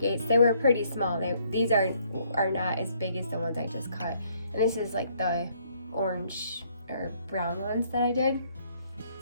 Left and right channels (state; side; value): inverted; both; correlation -0.67